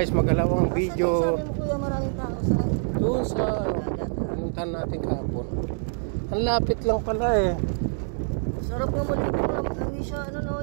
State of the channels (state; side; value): silent; left; digital silence